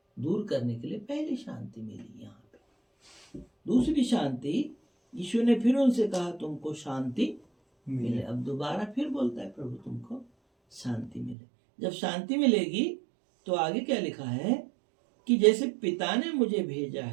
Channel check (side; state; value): left; drops out; at 11.4 s